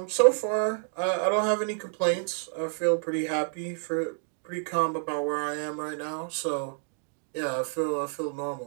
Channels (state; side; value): silent; left; 59 dB below the other